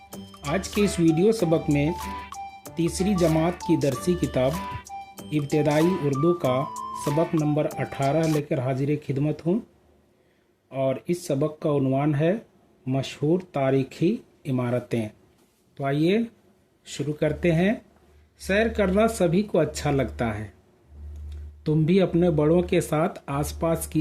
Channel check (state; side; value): identical; both; correlation 1.00